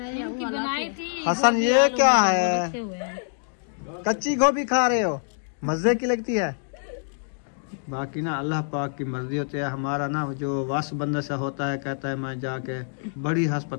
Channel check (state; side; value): silent; right; digital silence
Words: बनाई थी हसन ये क्या है, कच्ची गोभी खा रहे हो, मजे की लगती है। बाकी ना अल्लाह पाक की मर्जी होती है। हमारा ना जो वास बंदा सा होता है, कहता है मैं जाके बड़ी